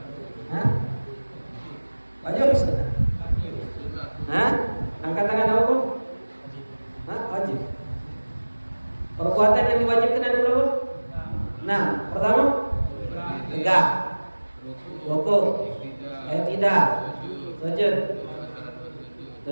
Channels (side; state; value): both; inverted; correlation -1.00